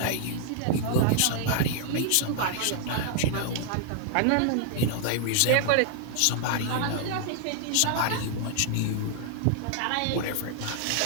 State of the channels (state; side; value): different; both; correlation -0.01